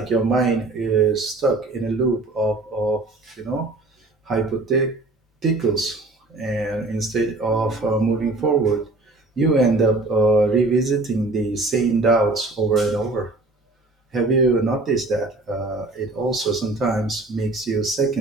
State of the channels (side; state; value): left; quieter; 3.1 dB